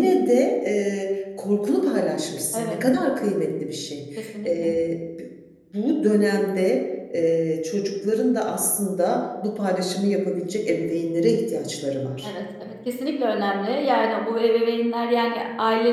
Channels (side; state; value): both; identical; correlation 1.00